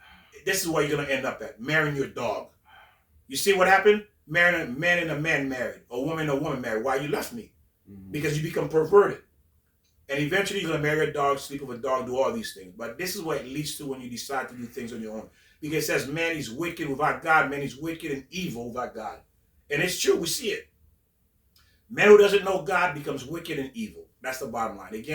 this is where you're going to end up at. Marrying your dog. You see what happened? Marrying a man and a man married. A woman and a woman married. Why you left me? Because you become perverted. And eventually you're going to marry a dog, sleep with a dog, do all these things. But this is what it leads to when you decide to do things on your own. Because it says man is wicked without God. Man is wicked and evil without God. And it's true. We see it. Man who doesn't know God becomes wicked and evil. That's the bottom line.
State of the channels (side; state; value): both; identical; correlation 1.00